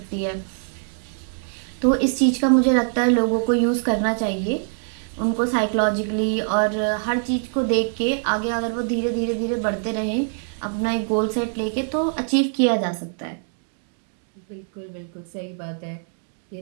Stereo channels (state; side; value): silent; left; digital silence